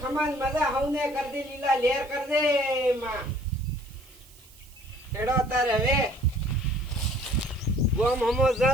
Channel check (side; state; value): right; noise; hiss, 24 dB below the sound